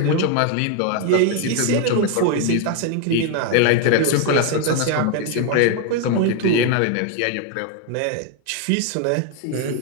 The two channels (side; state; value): both; different; correlation 0.01